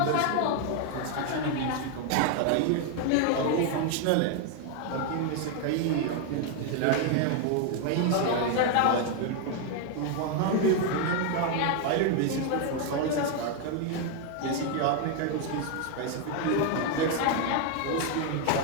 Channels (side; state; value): both; different; correlation 0.00